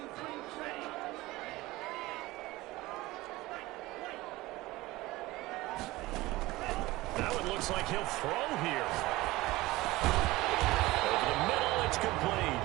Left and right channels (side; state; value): left; quieter; 19.3 dB